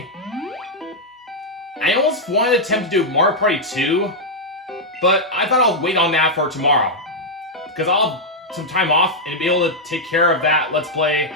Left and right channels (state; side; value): normal; both; correlation -0.03